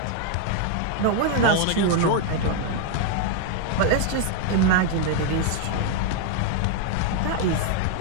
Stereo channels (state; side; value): different; both; correlation 0.00